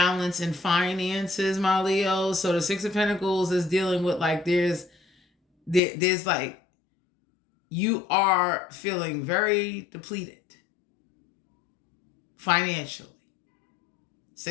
in finances, my Leo. So the Six of Pentacles is dealing with like there's like you are feeling very depleted financially.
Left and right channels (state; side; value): drops out; right; at 5.8 s